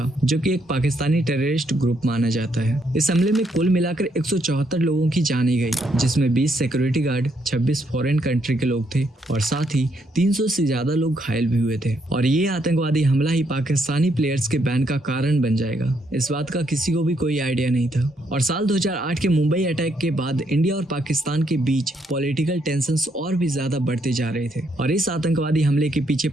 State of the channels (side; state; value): both; normal; correlation 0.74